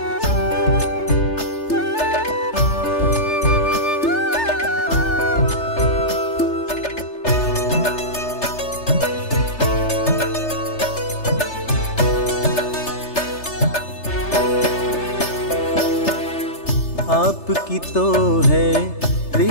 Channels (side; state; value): right; late; 3.3 ms